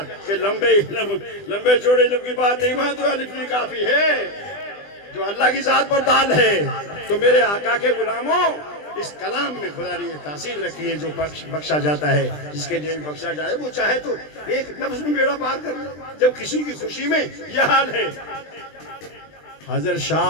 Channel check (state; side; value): late; right; 20 ms